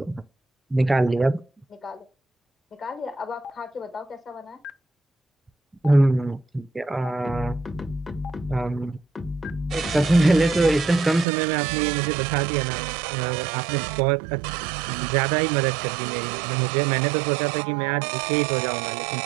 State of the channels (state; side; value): drops out; left; at 11.2 s